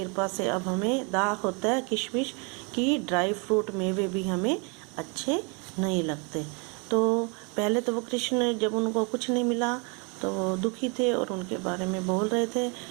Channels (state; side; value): quieter; left; 33.4 dB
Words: से अब हमें दाख होता है, किशमिश की ड्राई फ्रूट मेवे भी हमें अच्छे नहीं लगते। तो पहले तो वो कृष्ण, जब उनको कुछ नहीं मिला तो वो दुखी थे और उनके बारे में बोल रहे थे,